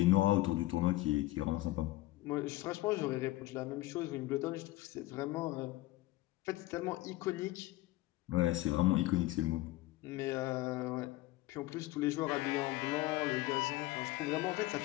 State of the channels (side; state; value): right; quieter; 17.8 dB